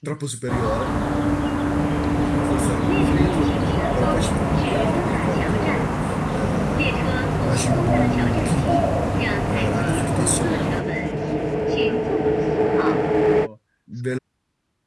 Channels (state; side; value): identical; both; correlation 1.00